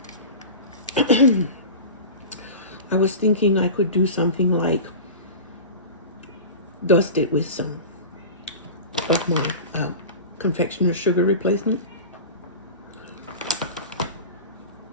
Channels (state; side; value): inverted; both; correlation -0.32